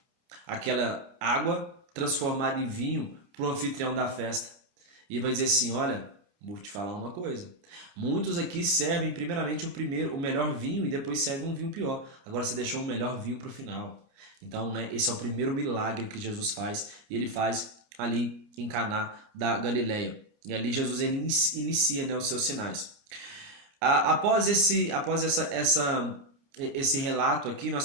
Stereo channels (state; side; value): late; left; 30 ms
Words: aquela água transformada em vinho para o anfitrião da festa. E vai dizer assim, olha, vou te falar uma coisa. Muitos aqui servem primeiramente o melhor vinho e depois servem um vinho pior. Agora você deixou o melhor vinho para o final. Então, né, esse é o primeiro milagre que Jesus faz. E ele faz ali em Caná da Galileia. E ali Jesus ele inicia, né, os seus sinais. Após esse relato aqui, nós